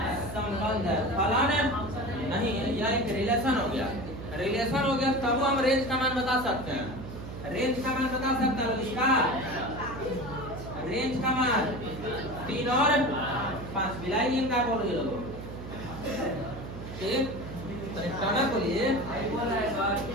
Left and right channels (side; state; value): right; noise; hum, 10 dB below the sound